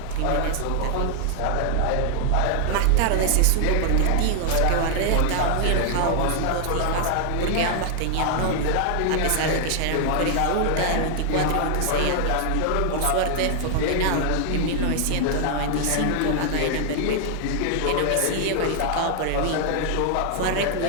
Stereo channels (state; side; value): different; both; correlation 0.00